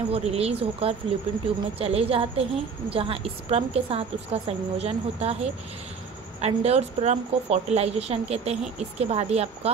वो रिलीज़ होकर फैलोपियन ट्यूब में चले जाते हैं, जहां स्पर्म के साथ उसका संयोजन होता है। अंडे और स्पर्म को फर्टिलाइजेशन कहते हैं। इसके बाद ही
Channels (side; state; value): left; quieter; 5.6 dB